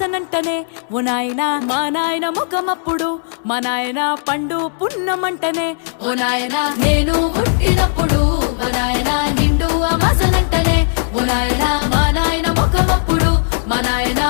ఓ నాయన మా నాయన ముఖమప్పుడు మా నాయన పండు పున్నమంటనే ఓ నాయన నేను పుట్టినప్పుడు మా నాయన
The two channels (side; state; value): right; silent; digital silence